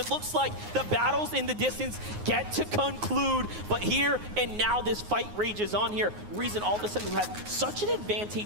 looks like the battles in the distance get to conclude. But here and now this fight rages on here. Reason all of a sudden who has such an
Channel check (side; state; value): left; late; 9.6 ms